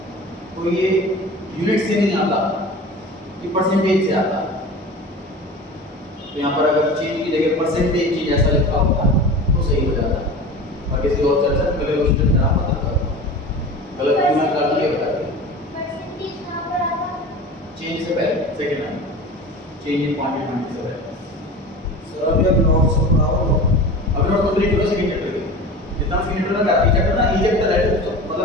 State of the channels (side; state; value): both; normal; correlation 0.35